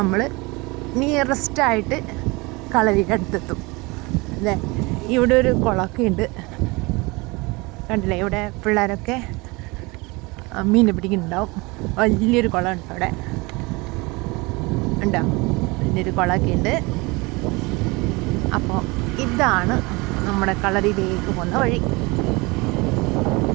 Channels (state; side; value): quieter; left; 25.1 dB